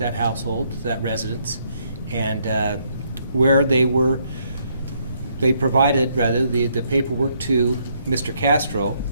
household, that residence, and where they provided the paperwork to Mr. Castro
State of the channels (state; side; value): inverted; both; correlation -0.71